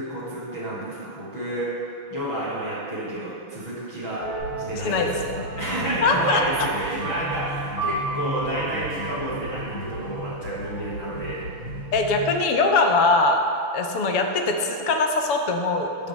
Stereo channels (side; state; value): right; late; 6.9 ms